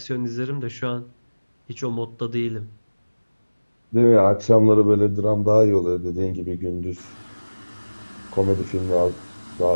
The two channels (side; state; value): both; inverted; correlation -1.00